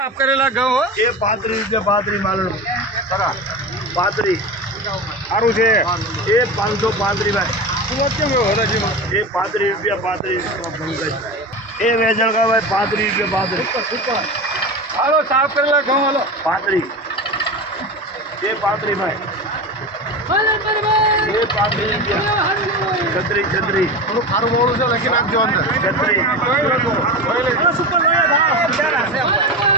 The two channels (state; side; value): normal; both; correlation 0.25